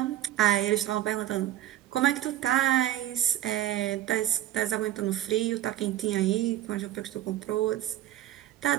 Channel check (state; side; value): quieter; left; 12.9 dB